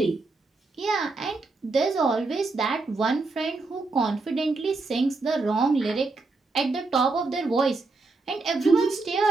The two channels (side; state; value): left; quieter; 3.7 dB